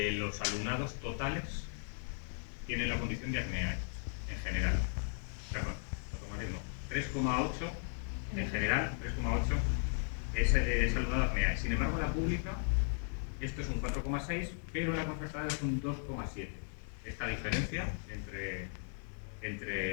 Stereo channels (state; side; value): silent; right; 53 dB below the other